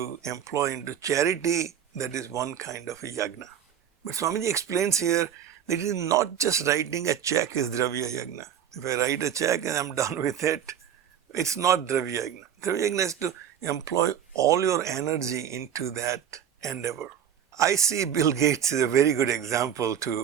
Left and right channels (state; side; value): quieter; left; 9.1 dB